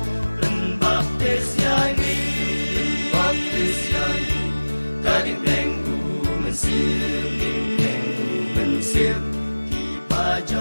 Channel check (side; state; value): both; inverted; correlation -1.00